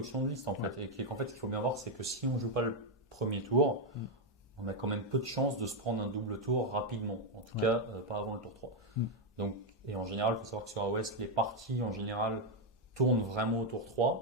de liste, en fait. Et qu'en fait, ce qu'il faut bien voir, c'est que si on ne joue pas le premier tour, on a quand même peu de chances de se prendre un double tour rapidement. En tout cas, pas avant le tour 3. Donc, et en général, il faut savoir que sur AOS, les parties, en général, tournent vraiment au tour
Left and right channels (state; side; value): normal; both; correlation 0.03